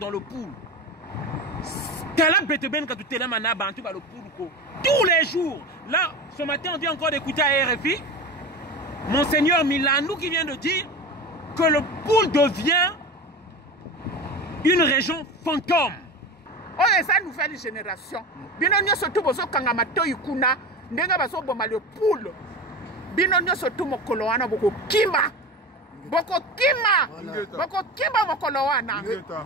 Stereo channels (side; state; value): both; normal; correlation 0.27